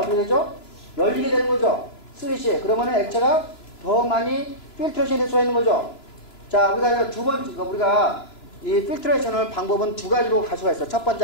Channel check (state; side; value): late; right; 2.9 ms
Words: 되죠? 열리게 되는 거죠. 슬릿이. 그러면은 액체가 더 많이 필트레이션이 될 수가 있는 거죠. 자, 우리가 두 번째, 우리가 이 필트레이션을 방법은 두 가지로 갈 수가 있어요. 첫